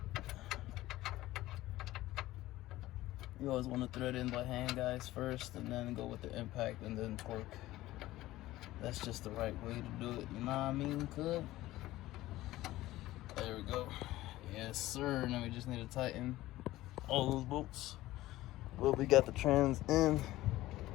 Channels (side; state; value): right; quieter; 16.5 dB